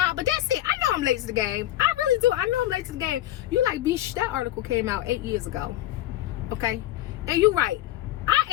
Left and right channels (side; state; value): right; quieter; 14.3 dB